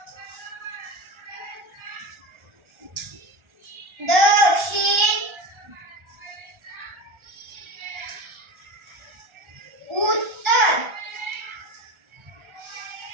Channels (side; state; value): left; late; 1.4 ms